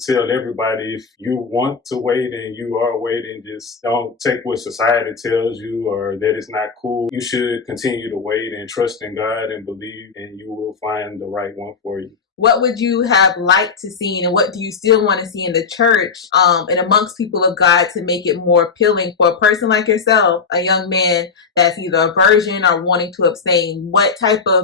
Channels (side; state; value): right; quieter; 5.4 dB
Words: everybody, if you want to wait and you are waiting, just don't take what society tells you or that it's not cool. You should continue to wait and trust in God and believe, and you will find the right one for you. What would you have liked to see, and what do you still want to see in the church and amongst people of God to make it more appealing for a person like yourself, a young man that's either a virgin or wanting to abstain? What type